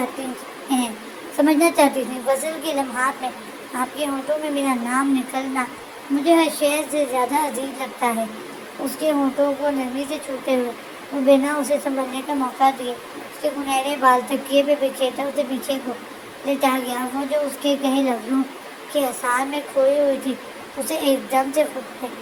تھی۔ غسل کے لمحات میں آپ کے ہونٹوں میں میرا نام نکلنا مجھے ہر شے سے زیادہ عزیز لگتا ہے۔ اس کے ہونٹوں کو نرمی سے چھوتے ہوئے وہ بنا اسے سنبھلنے کا موقع دیے اس کے سنہرے بال تکیے پہ بکھیرتا اسے پیچھے کو لٹا گیا۔ وہ جو اس کے کہے لفظوں کے اثار میں کھوئی ہوئی تھی اسے ایک دم سے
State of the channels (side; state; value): both; identical; correlation 1.00